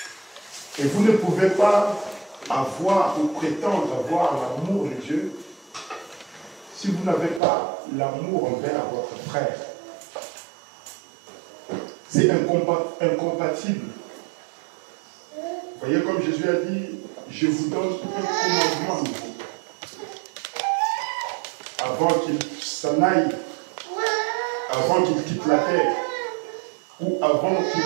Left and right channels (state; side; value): drops out; left; at 7.4 s